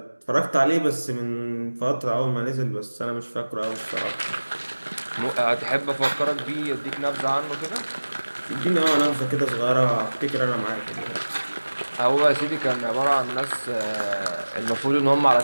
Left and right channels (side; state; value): both; inverted; correlation -1.00